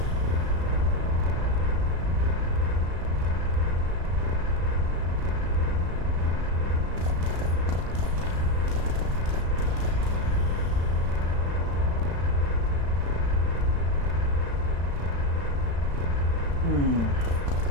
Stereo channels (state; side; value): late; left; 35 ms